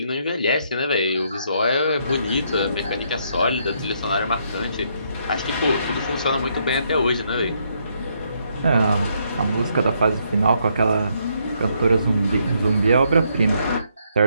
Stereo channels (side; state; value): both; inverted; correlation -0.74